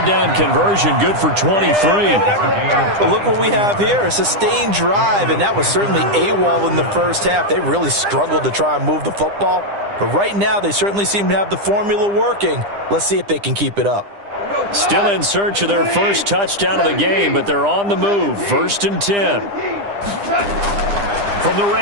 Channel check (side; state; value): left; late; 9.9 ms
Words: down conversion good for 23. But look what we have here, a sustained drive, and that was certainly AWOL in the first half. They really struggled to try and move the football. But right now, they certainly seem to have the formula working. Let's see if they can keep it up. Still in search of their first touchdown of the game, but they're on the move. 1st and 10. From the